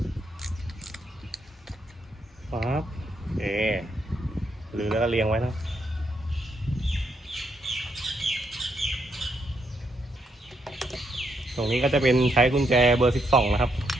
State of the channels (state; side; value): normal; both; correlation 0.77